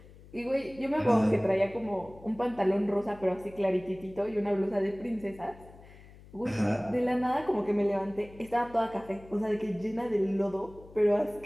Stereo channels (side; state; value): left; noise; hum, 21 dB below the sound